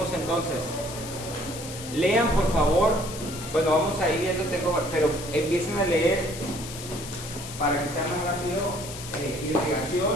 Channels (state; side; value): noise; left; hiss, 11 dB below the sound